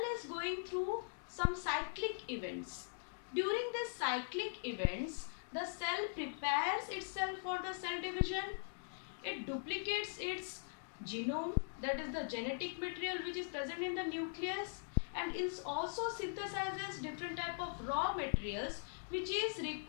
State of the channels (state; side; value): silent; right; digital silence